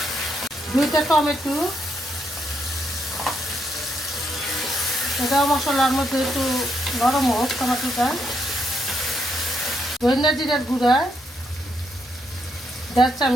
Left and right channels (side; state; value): both; normal; correlation 0.77